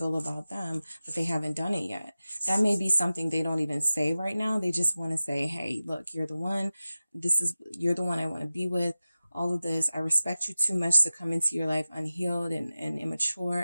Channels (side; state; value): both; inverted; correlation -0.95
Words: about them, but they haven't done it yet. That may be something they don't even say right now. They just want to say, hey, look, you're the one. You're the one I want to be with. All of this, I respect you too much to come into your life unhealed and